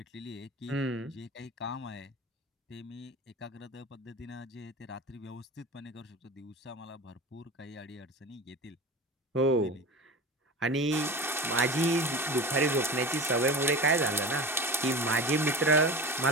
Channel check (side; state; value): both; normal; correlation 0.32